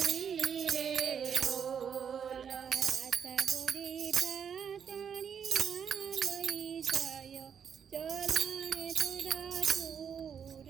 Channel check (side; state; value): left; quieter; 7.6 dB